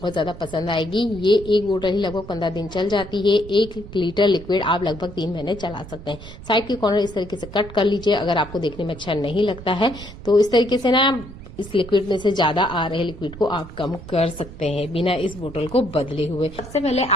ज्यादा पसंद आएगी। ये एक बोतल ही लगभग 15 दिन चल जाती है। 1 लीटर लिक्विड आप लगभग 3 महीने चला सकते हैं। साइड के कॉर्नर इस तरीके से कट कर लीजिए। अगर आपको देखने में अच्छा नहीं लगता है तो इस तरीके से ना इस लिक्विड में से ज्यादा आ रहे लिक्विड को आप कम कर सकते हैं बिना इस बोतल को बदले हुए। सबसे पहले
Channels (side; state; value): right; noise; rumble, 14 dB below the sound